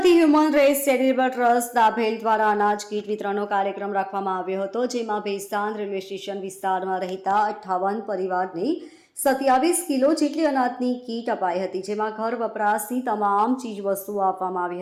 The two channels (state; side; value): identical; both; correlation 1.00